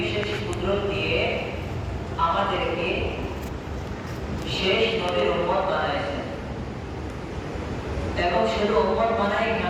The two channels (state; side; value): identical; both; correlation 1.00